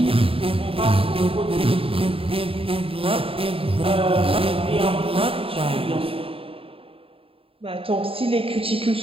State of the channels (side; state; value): left; late; 0.27 ms